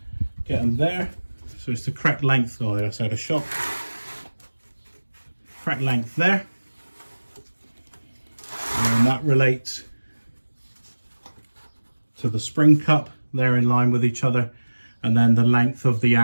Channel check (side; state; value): both; inverted; correlation -1.00